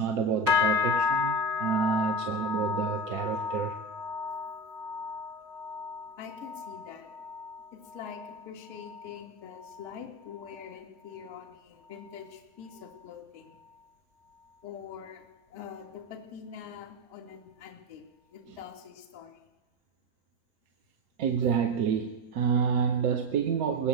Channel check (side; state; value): left; late; 5.5 ms